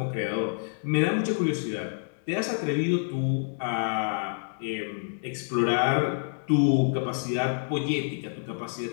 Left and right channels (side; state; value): right; silent; digital silence